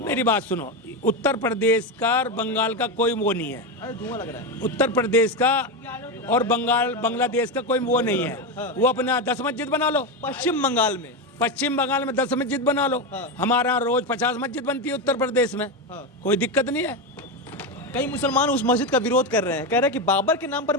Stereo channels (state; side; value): normal; both; correlation 0.13